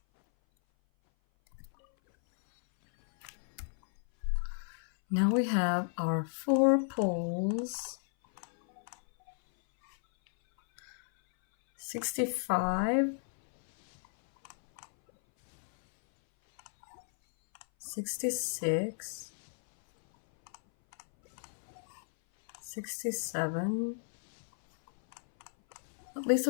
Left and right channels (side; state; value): right; silent; 56 dB below the other